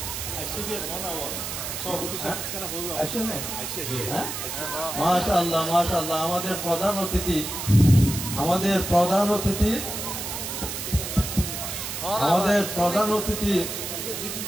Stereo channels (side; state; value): right; noise; hiss, 5 dB below the sound